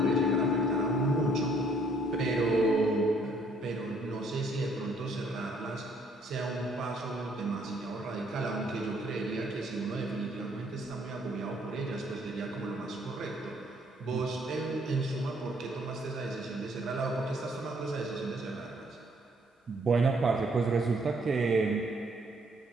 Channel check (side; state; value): both; normal; correlation 0.65